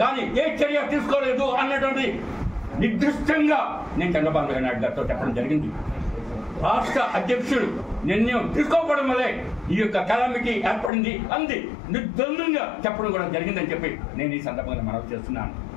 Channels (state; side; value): drops out; right; at 10.9 s